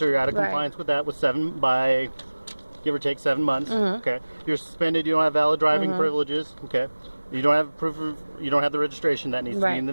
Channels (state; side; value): inverted; both; correlation -1.00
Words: you're out of Right. compliance with that with give or take 7 months. Okay. You're suspended. You don't have valid driving privileges. Okay. You don't have you don't have the registration that needs to Right. be in the